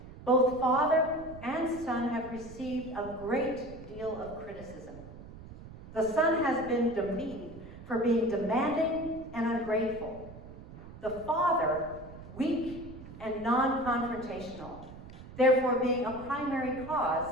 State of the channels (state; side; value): noise; right; rumble, 15 dB below the sound